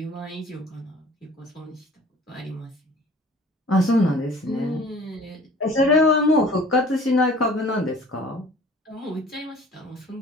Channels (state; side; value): normal; both; correlation 0.48